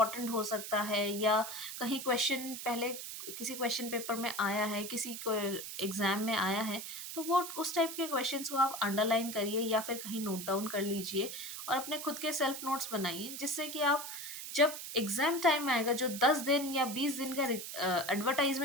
हो सकता है, या कहीं क्वेश्चन पहले किसी क्वेश्चन पेपर में आया है, किसी को एग्जाम में आया है, तो वो उस टाइप के क्वेश्चंस को आप अंडरलाइन करिए या फिर कहीं नोट डाउन कर लीजिए और अपने खुद के सेल्फ नोट्स बनाइए, जिससे कि आप जब एग्जाम टाइम आएगा, जो 10 दिन या 20 दिन का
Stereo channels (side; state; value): right; noise; hiss, 8 dB below the sound